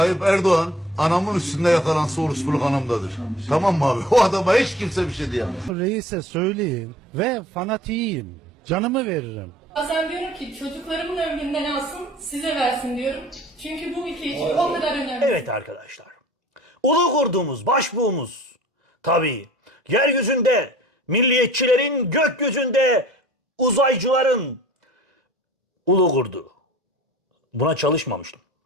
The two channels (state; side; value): normal; both; correlation 0.47